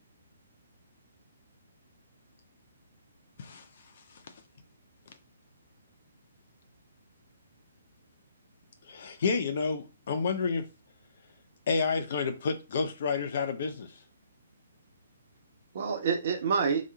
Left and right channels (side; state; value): both; inverted; correlation -0.64